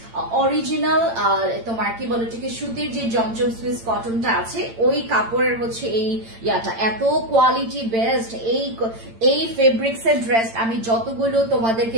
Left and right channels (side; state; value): left; late; 8.8 ms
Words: অরিজিনাল তোমার কি বলে এটাকে সুতির যে জমজম সুইস কটনটা আছে ওই কাপড়ের হচ্ছে এই ইয়াটা, এত কোয়ালিটি বেস্ট। এই ফেব্রিক্স এর ড্রেস আমি যতগুলো